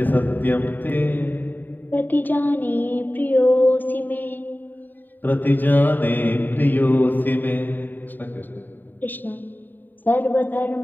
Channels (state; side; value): late; right; 0.090 ms